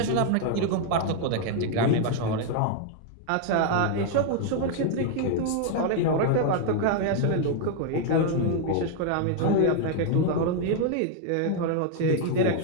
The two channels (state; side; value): different; both; correlation 0.00